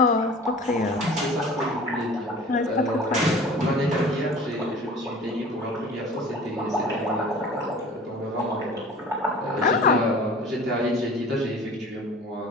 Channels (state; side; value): normal; both; correlation 0.43